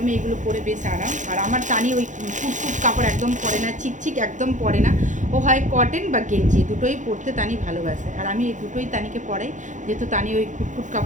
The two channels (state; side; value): late; left; 0.36 ms